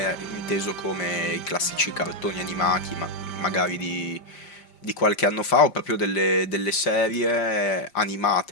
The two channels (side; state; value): right; late; 5.1 ms